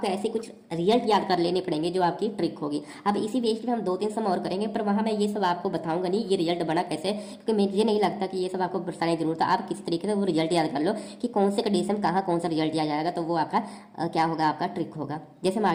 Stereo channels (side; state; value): both; identical; correlation 1.00